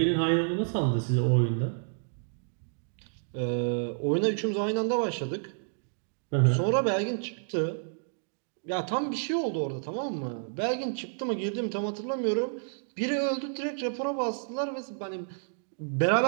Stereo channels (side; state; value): left; silent; digital silence